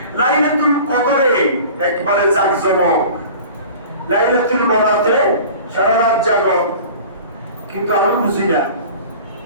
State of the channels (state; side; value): inverted; both; correlation -0.41